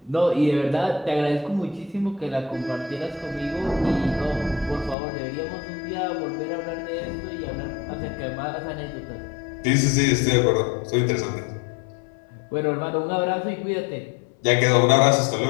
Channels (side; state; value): right; drops out; at 5.0 s